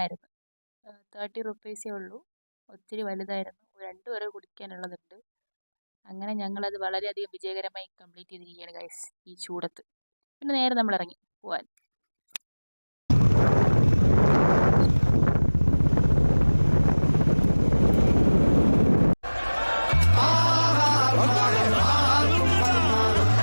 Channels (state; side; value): inverted; both; correlation -1.00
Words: 30 റുപ്പീസേ ഉള്ളൂ. ഒത്തിരി വലുതായിരുന്നു. 2 പേരെ കുടിക്കാനുള്ളതുണ്ട്. അങ്ങനെ ഞങ്ങളത് വളരെയധികം വിജയകരമായി കംപ്ലീറ്റ് ചെയ്തിരിക്കുകയാണ് ഗൈസ് ഈ ചൂടത്ത്. പിന്നെ നേരെ നമ്മൾ ഇറങ്ങി പോവാൻ.